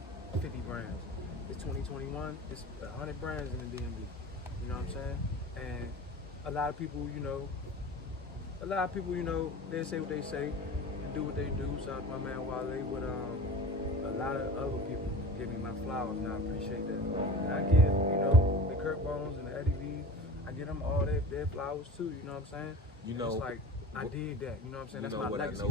50 brands. It's 2021, it's 100 brands in the DMV. You know what I'm saying? And a lot of people, you know, they say what they say and do what they do. Shout out to my man Wale, but a lot of other people give me my flowers, and I appreciate that. And I give, you know, the Kirk Bones and the Eddie V, I give them all their flowers too. You know what I'm saying? You know, it's like I did that. You know what I'm saying? You That's know my what legacy I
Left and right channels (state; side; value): normal; both; correlation 0.35